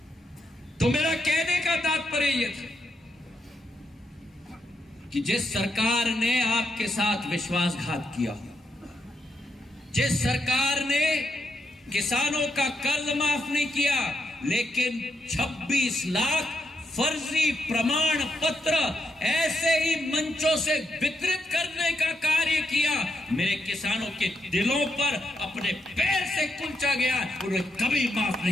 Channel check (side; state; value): both; normal; correlation 0.81